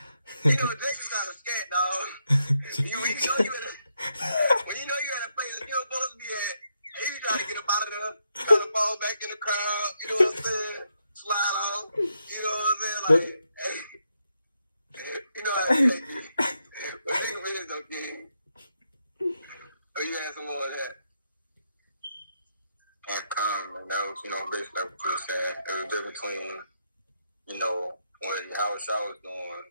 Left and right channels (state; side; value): inverted; both; correlation -0.79